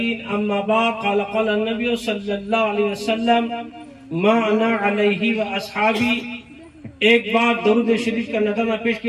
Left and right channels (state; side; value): identical; both; correlation 1.00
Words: أما بعد قال النبي صلى الله عليه وسلم ما أنا عليه وأصحابي۔ ایک بار درود شریف کا نظرانہ پیش